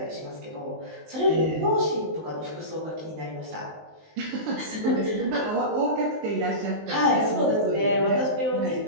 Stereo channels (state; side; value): late; left; 19 ms